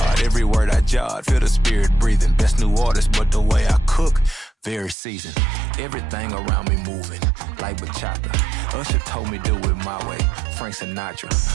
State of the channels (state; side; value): drops out; left; at 5.0 s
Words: every word I jot. Feel the spirit breathing. Best new artist, but the way I cook, very seasoned. Everything around me moving, like bachata. Usher told me do it my way. Frank Sinatra.